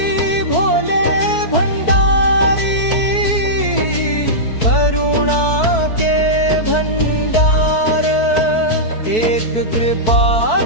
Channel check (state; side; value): late; right; 4.6 ms